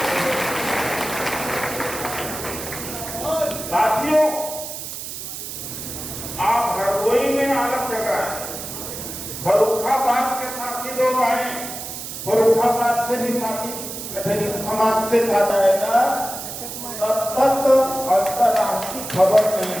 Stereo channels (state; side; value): noise; right; hiss, 8 dB below the sound